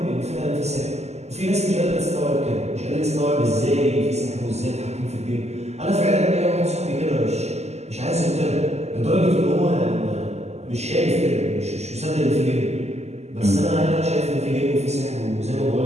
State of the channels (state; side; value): late; left; 0.32 ms